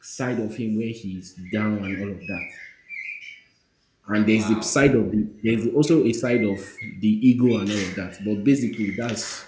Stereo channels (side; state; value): both; identical; correlation 1.00